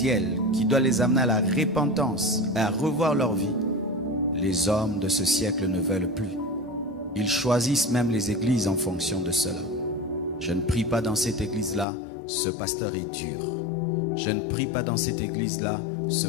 qui doit les amener à la repentance, à revoir leur vie, les hommes de ce siècle ne veulent plus. Ils choisissent même les églises en fonction de cela. Je ne prie pas dans cette église-là, ce pasteur est dur. Je ne prie pas dans cette église-là, ce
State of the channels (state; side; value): drops out; right; at 11.9 s